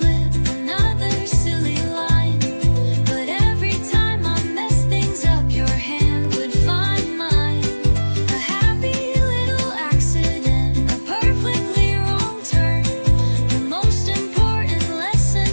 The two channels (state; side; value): inverted; both; correlation -1.00